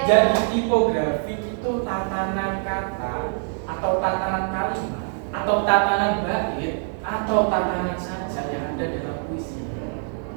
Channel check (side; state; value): left; silent; 57 dB below the other